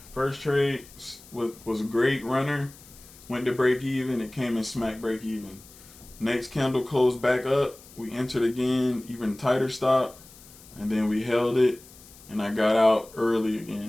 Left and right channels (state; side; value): noise; left; hiss, 22 dB below the sound